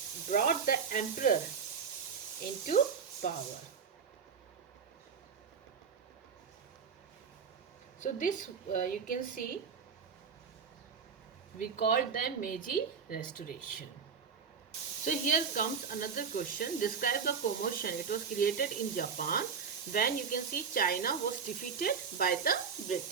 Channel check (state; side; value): quieter; left; 6.1 dB